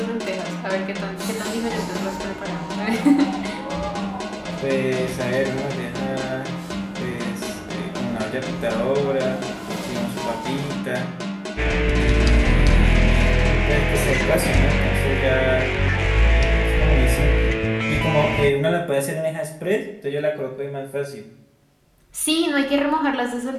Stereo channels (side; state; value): both; identical; correlation 1.00